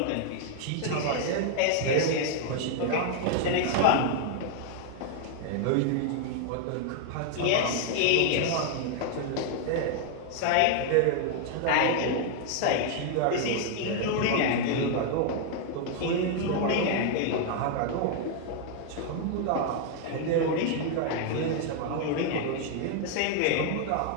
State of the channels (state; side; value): different; both; correlation 0.00